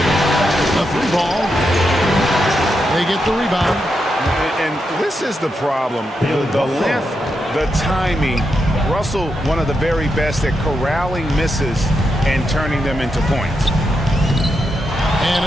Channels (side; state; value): both; normal; correlation 0.84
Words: The 3 ball. They get the rebound. And this is the problem. The length, the timing. Russell, one of the very best at corralling misses and turning them into points. And